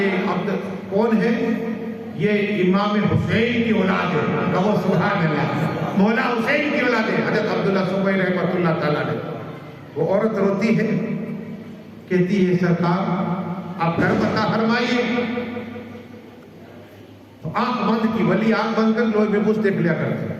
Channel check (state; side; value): identical; both; correlation 1.00